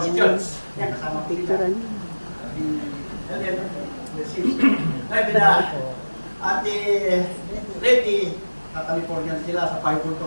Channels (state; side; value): inverted; both; correlation -1.00